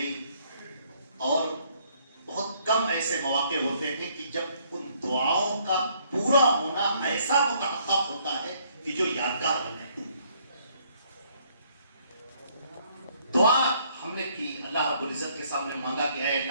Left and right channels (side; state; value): both; inverted; correlation -0.65